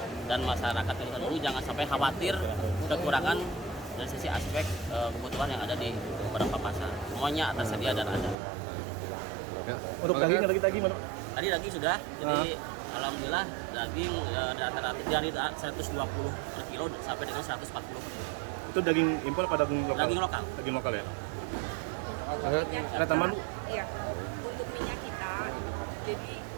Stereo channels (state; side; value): drops out; left; at 8.3 s